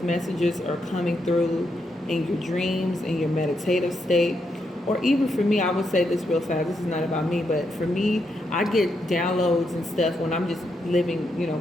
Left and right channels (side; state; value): both; normal; correlation 0.81